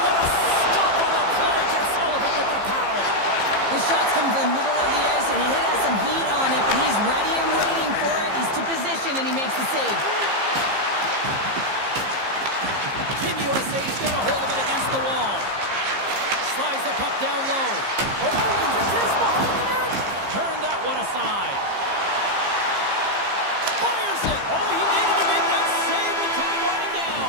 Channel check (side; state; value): left; late; 15 ms